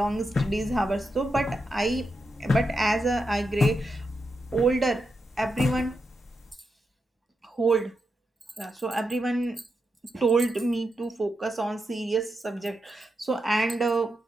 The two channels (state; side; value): normal; both; correlation 0.86